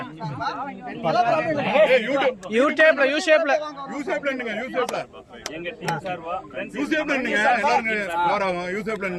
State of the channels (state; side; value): identical; both; correlation 1.00